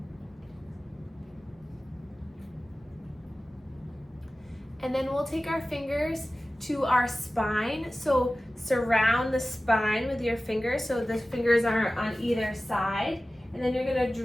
And then we'll take our fingers to our spine. So surround the spine with your fingers. So the fingers are on either side. And then you're gonna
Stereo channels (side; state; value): both; normal; correlation 0.96